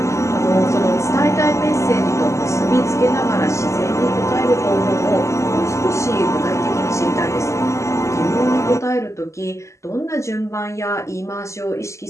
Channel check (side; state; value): right; late; 0.14 ms